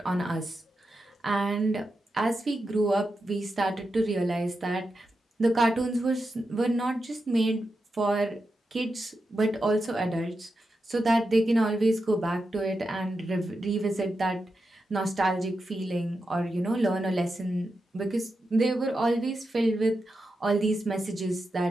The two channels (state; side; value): normal; both; correlation 0.88